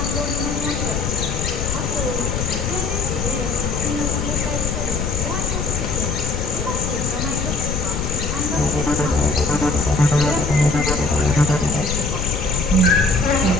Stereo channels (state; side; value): noise; left; rumble, 2 dB below the sound